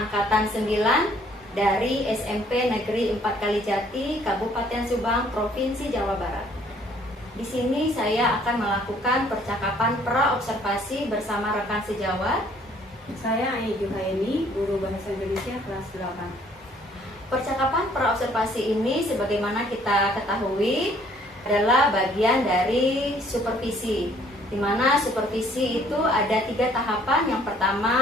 9 dari SMP Negeri 4 Kalijati, Kabupaten Subang, Provinsi Jawa Barat. Di sini saya akan melakukan percakapan pra-observasi bersama rekan sejawat. Saya Ai Juhaini, guru Bahasa Indonesia kelas 8. Percakapan pra-observasi ini sebagaimana kita ketahui adalah bagian dari supervisi, di mana supervisi itu ada 3 tahapan. Yang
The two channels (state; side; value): normal; both; correlation 0.61